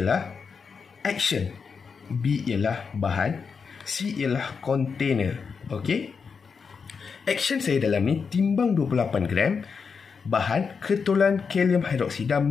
action, B ialah bahan, C ialah container. Okey. Action saya dalam ni timbang 28 gram bahan ketulan kalium hidroksida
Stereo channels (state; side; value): quieter; right; 5.7 dB